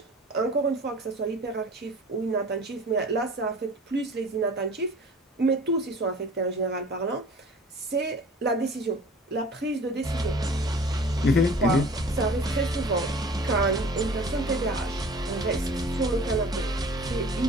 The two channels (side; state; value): both; normal; correlation 0.44